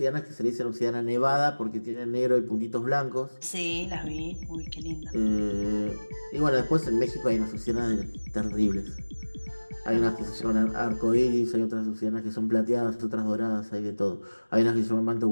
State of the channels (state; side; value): inverted; both; correlation -1.00